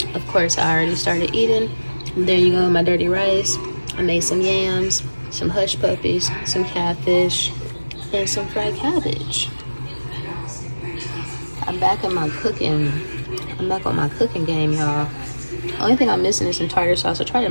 Of course, I already started eating. There you go, my dirty rice. I made some yams, some hush puppies, some catfish, and some fried cabbage. I'm back on my cooking game, y'all. Only thing I'm missing is some tartar sauce. I tried to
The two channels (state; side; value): inverted; both; correlation -1.00